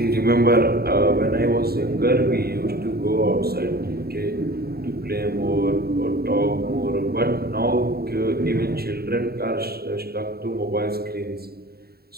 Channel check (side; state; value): left; late; 0.45 ms